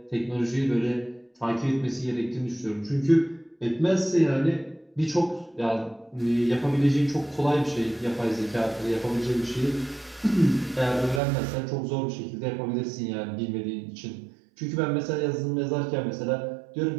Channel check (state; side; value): drops out; left; at 11.2 s